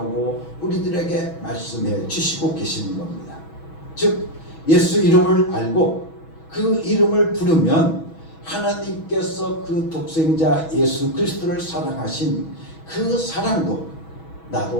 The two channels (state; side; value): late; right; 6.2 ms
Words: 우리들에게 말씀해 주시고 계시는 겁니다. 즉 예수 이름을 알고 그 이름을 부르면 하나님께서 그 독생자 예수 그리스도를 사랑하신 그 사랑도